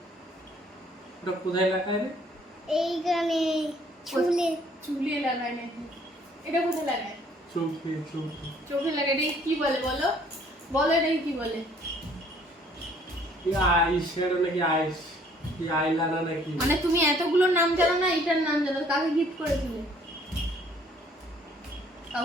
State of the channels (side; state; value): both; normal; correlation 0.60